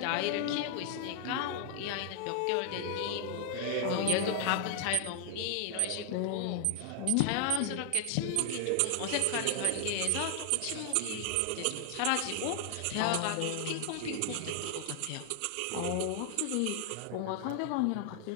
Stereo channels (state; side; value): different; both; correlation 0.00